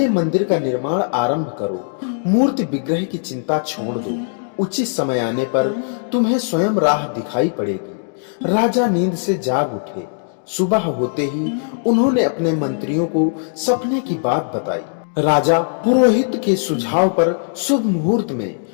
मंदिर का निर्माण आरंभ करो। मूर्ति विग्रह की चिंता छोड़ दो। उचित समय आने पर तुम्हें स्वयं राह दिखाई पड़ेगी। राजा नींद से जाग उठे। सुबह होते ही उन्होंने अपने मंत्रियों को सपने की बात बताई। राजा पुरोहित के सुझाव पर शुभ मुहूर्त में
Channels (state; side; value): silent; right; digital silence